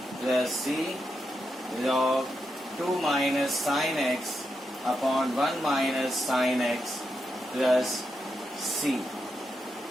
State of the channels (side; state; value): both; normal; correlation 0.85